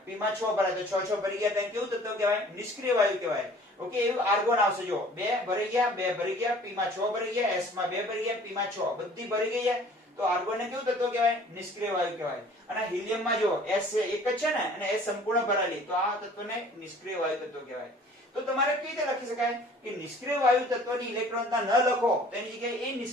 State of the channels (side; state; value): both; normal; correlation 0.51